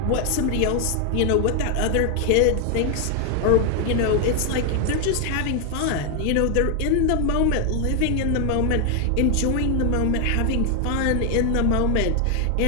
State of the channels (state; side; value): different; both; correlation 0.00